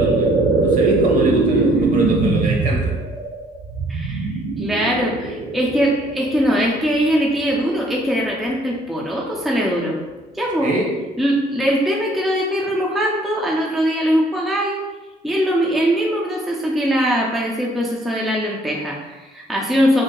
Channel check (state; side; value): normal; both; correlation 0.62